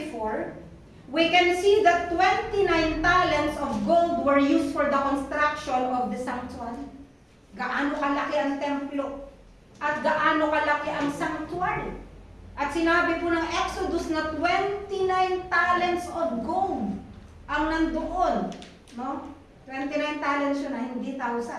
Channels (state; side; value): identical; both; correlation 1.00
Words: we can see that 29 talents of gold were used for the construction of the sanctuary. Gaano kalaki ang templo at gaano kalaki ang sanctuary. At sinabi po ng Exodus na 29 talents of gold ang nandoon. No? 29 talents yun na, hindi